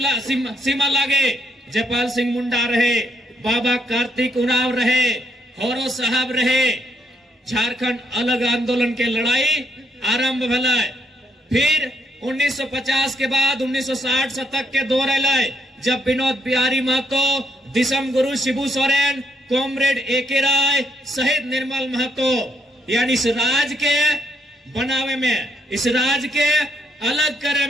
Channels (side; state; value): both; normal; correlation 0.74